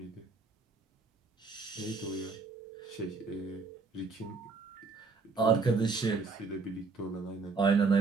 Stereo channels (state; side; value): quieter; left; 4.4 dB